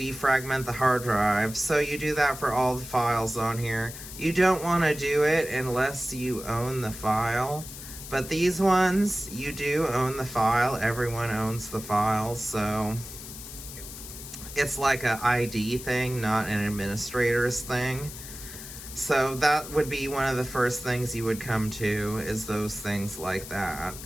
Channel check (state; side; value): noise; left; hiss, 12 dB below the sound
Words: the hard drive. So you do that for all the files on here. You don't want to do it unless you own the file. But these ones, you do own the file. Everyone owns the file. So it's like a ID thing, not an administrator's thing. So that would be one of the first things you would come to, is those things like that.